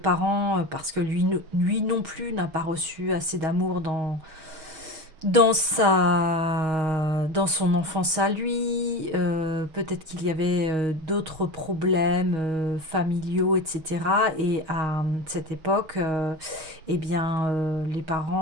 parce que lui non plus n'a pas reçu assez d'amour dans son enfance à lui, peut-être qu'il y avait d'autres problèmes familiaux, etc. Et à cette époque, eh bien, les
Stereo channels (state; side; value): late; left; 6.3 ms